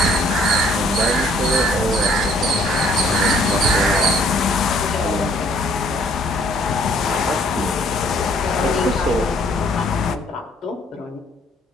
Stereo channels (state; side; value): normal; both; correlation 0.61